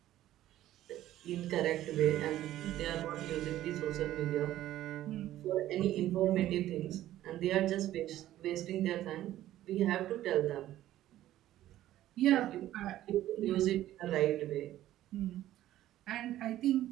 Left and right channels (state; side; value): quieter; left; 13.7 dB